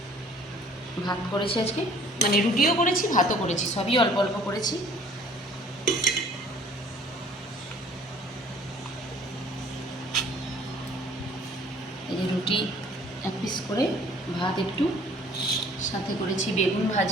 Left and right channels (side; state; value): both; normal; correlation 0.54